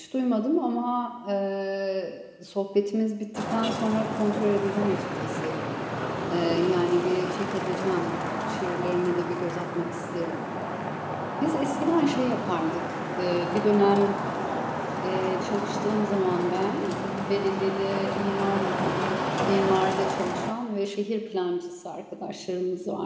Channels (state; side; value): identical; both; correlation 1.00